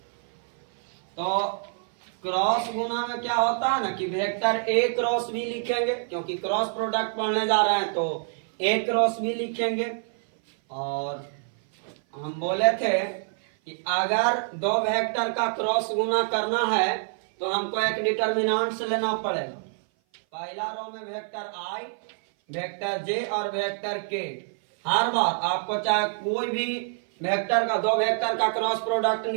तो क्रॉस गुना में क्या होता है ना कि वेक्टर ए क्रॉस बी लिखेंगे, क्योंकि क्रॉस प्रोडक्ट पढ़ने जा रहे हैं तो ए क्रॉस बी लिखेंगे। और हम बोले थे कि अगर दो वेक्टर का क्रॉस गुना करना है तो हमको एक डिटर्मिनेंट्स लेना पड़ेगा। पहला रो में वेक्टर आई, वेक्टर जे और वेक्टर के। हर बार आपको चाहे कोई भी वेक्टर का दो वेक्टर का क्रॉस प्रोडक्ट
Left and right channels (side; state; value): left; silent; 57 dB below the other